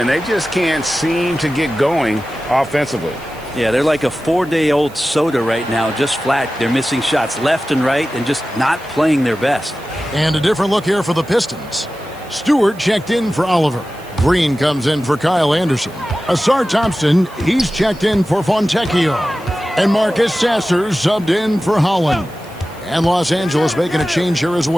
they just can't seem to get going offensively. Yeah, they're like a 4-day-old soda right now, just flat. They're missing shots left and right and just not playing their best. And a different look here for the Pistons. Stewart checked in for Oliver. Green comes in for Kyle Anderson. Asar Thompson, he's checked in for Fontecchio. And Marcus Sasser subbed in for Holland. And Los Angeles making a change here as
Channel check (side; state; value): right; noise; hiss, 24 dB below the sound